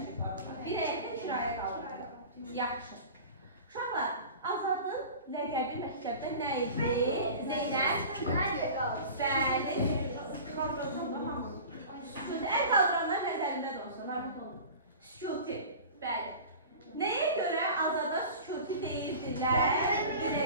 Bir həyətdə kirayə qalırlar. Yaxşı. Uşaqlar, Azadın ləqəbi məktəbdə nə idi? Zeynəb? Bəli. Əl qaldıranlar nəzərində də olsun, rahmet olun. Sükuti, bəli. Nəyə görə Azada sükuti deyirdilər? Bir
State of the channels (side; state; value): both; inverted; correlation -0.37